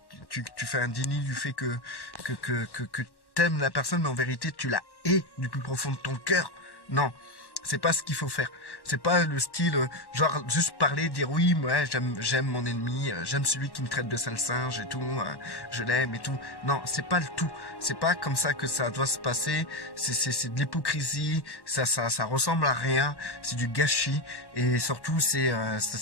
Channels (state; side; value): late; right; 1.1 ms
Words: tu fais un déni du fait que t'aimes la personne, mais en vérité tu la hais du plus profond de ton cœur. Non. C'est pas ce qu'il faut faire. C'est pas le style, genre juste parler, dire oui, moi j'aime mon ennemi, j'aime celui qui me traite de sale singe et tout, je l'aime et tout. Non, c'est pas le tout. C'est pas comme ça que ça doit se passer. C'est de l'hypocrisie. Ça ressemble à rien. C'est du gâchis et surtout